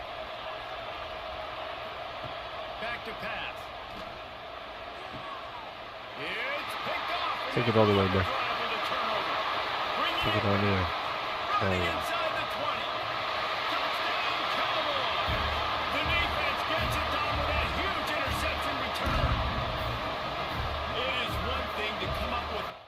Back to pass. It's picked off. Take it all the way, bro. Take it all the way. Running inside the 20. Touchdown, Cowboys. The defense gets it done with that huge interception return. It is one thing to come up with.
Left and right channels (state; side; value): identical; both; correlation 1.00